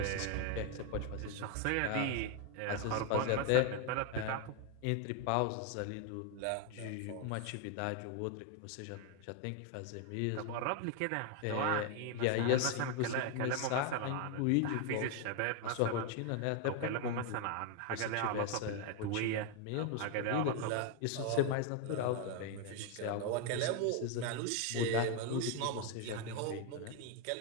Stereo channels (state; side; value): different; both; correlation 0.01